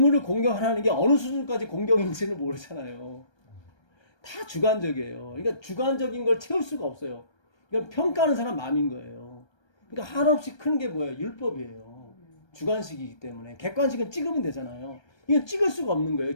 공경하라는 게 어느 수준까지 공경인지는 모르잖아요. 다 주관적이에요. 그러니까 주관적인 걸 채울 수가 없어요. 그러니까 평가하는 사람 마음인 거예요. 그러니까 한없이 큰 게 뭐예요? 율법이에요. 주관식이기 때문에. 객관식은 찍으면 되잖아요. 이건 찍을 수가 없는 거예요.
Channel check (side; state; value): right; late; 1.3 ms